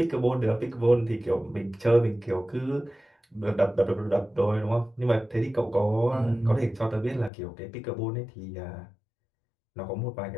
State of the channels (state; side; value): drops out; right; at 7.3 s